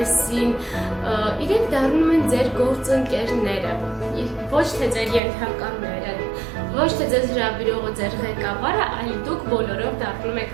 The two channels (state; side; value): drops out; left; at 5.2 s